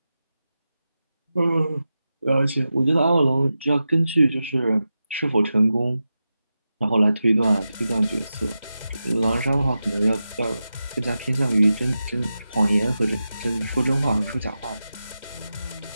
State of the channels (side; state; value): both; inverted; correlation -0.92